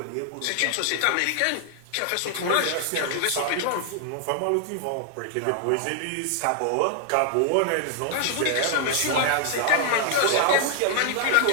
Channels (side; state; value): both; different; correlation 0.00